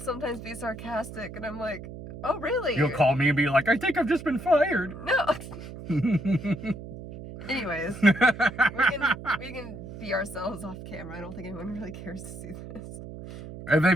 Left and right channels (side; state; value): right; noise; hum, 12 dB below the sound